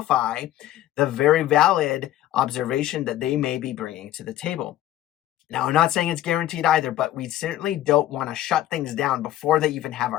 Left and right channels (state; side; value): quieter; right; 13.6 dB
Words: the very valid observation that they may be bringing to the table. Now, I'm not saying it's guaranteed either, but we certainly don't want to shut things down before they even have